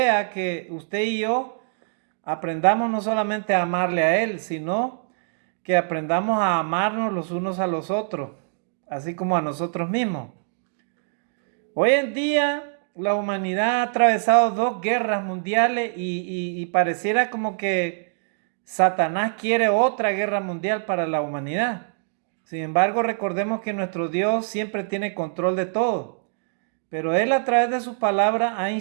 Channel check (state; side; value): silent; left; digital silence